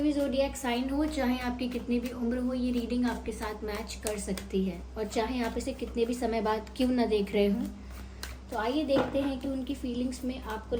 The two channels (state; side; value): identical; both; correlation 1.00